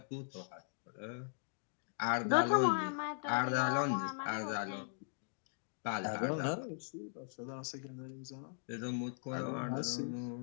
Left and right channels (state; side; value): silent; right; digital silence